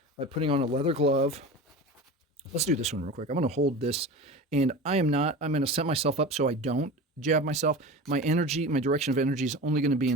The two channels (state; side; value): normal; both; correlation 0.31